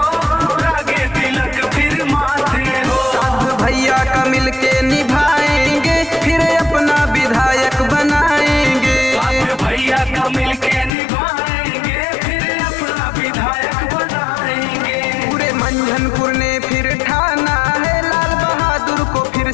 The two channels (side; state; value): right; drops out; at 10.9 s